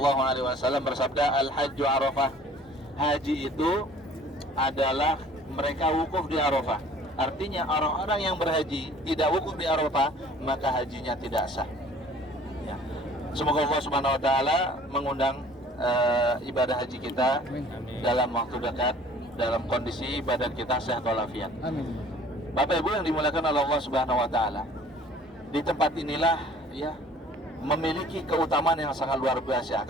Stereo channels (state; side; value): normal; both; correlation 0.52